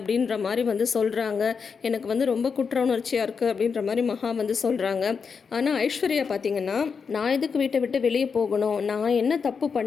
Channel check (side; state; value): right; quieter; 5.8 dB